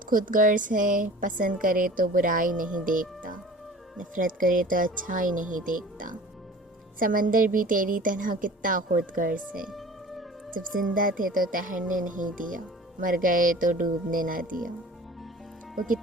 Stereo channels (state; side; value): normal; both; correlation 0.43